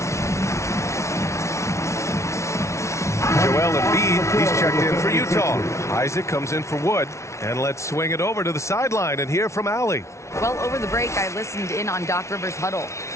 Joel Embiid, he's checked in for Utah. Isaac comes in for Wood. And let's swing it over to the sideline and hear from Allie. Well, over the break, I listened in on Doc Rivers' huddle.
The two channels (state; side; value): late; right; 0.13 ms